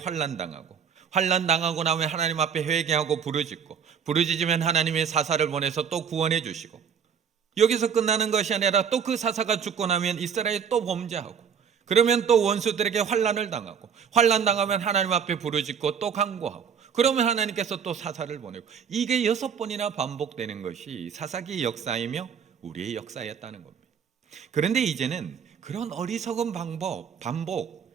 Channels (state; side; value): quieter; left; 7.2 dB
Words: 환난당하고 나면 하나님 앞에 회개하고 부르짖으면 하나님의 사사를 보내서 또 구원해 주시고, 여기서 끝나는 것이 아니라 또 그 사사가 죽고 나면 이스라엘이 또 범죄하고, 그러면 또 원수들에게 환난을 당하고, 환난당하면 하나님 앞에 부르짖고 또 간구하고, 그러면 하나님께서 또 사사를 보내고, 이게 6번이나 반복되는 것이 사사기 역사이며 우리의 역사였다는 겁니다. 그런데 이제는 그런 어리석은